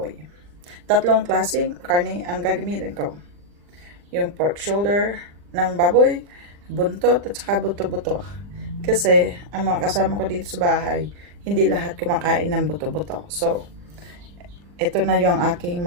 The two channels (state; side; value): late; left; 40 ms